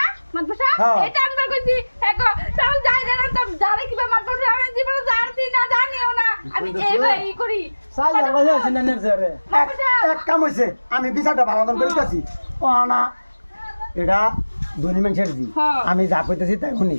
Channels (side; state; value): both; inverted; correlation -1.00